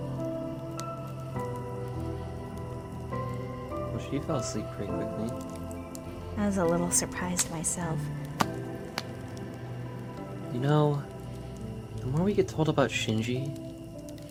Well, she fell asleep pretty quickly. I was a little surprised myself. You know, the more we get told about Shinji,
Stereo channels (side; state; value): both; identical; correlation 1.00